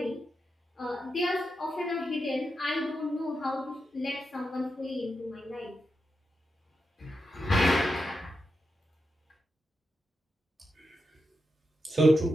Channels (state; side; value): normal; both; correlation 0.87